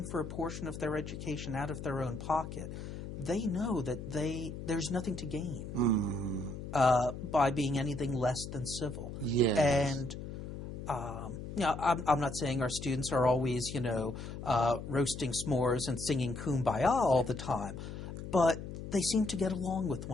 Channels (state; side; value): noise; left; hum, 9 dB below the sound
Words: for a portion of their education out of their own pocket. They know that there's nothing to gain by being anything less than civil. And you know, I'm not saying our students are always, you know, roasting s'mores and singing Kumbaya all the time, but they seem to get along with